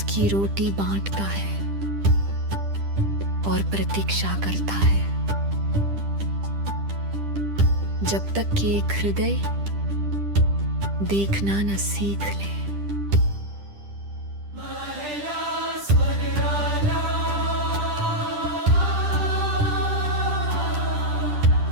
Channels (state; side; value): late; left; 10 ms